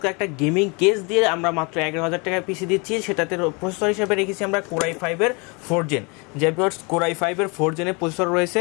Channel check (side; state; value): right; quieter; 30.5 dB